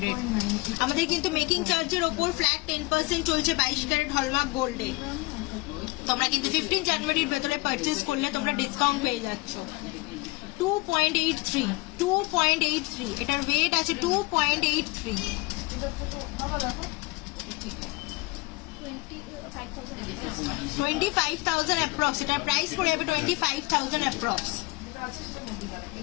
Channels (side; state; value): right; quieter; 24.2 dB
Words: আমাদের কিন্তু মেকিং চার্জের ওপর ফ্ল্যাট 10% চলছে 22 ক্যারেট হলমার্ক গোল্ডে। তোমরা কিন্তু 15 জানুয়ারির ভেতরে পারচেস করলে তোমরা ডিসকাউন্ট পেয়ে যাচ্ছ। 2.83, 2.83, এটার ওয়েট আছে 2.83, 25,000 অ্যাপ্রক্স, এটার প্রাইস পড়ে যাবে 25,000 অ্যাপ্রক্স।